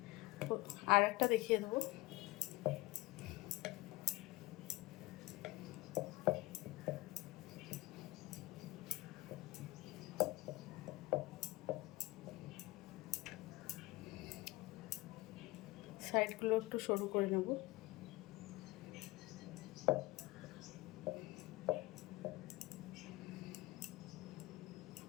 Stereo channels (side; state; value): right; quieter; 20.9 dB